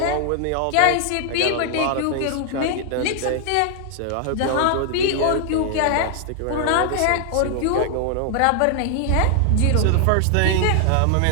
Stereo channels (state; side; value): different; both; correlation 0.00